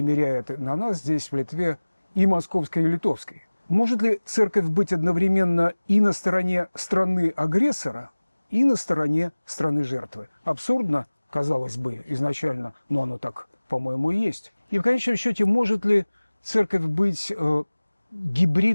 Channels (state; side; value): inverted; both; correlation -1.00